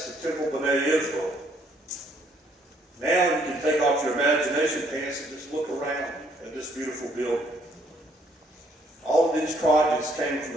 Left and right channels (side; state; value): both; normal; correlation 0.67